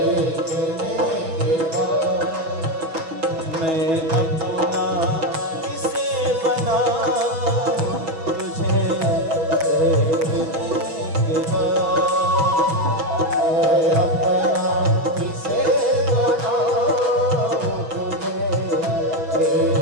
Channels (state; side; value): late; left; 6.2 ms